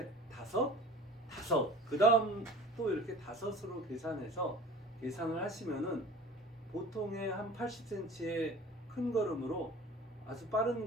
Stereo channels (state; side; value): normal; both; correlation 0.43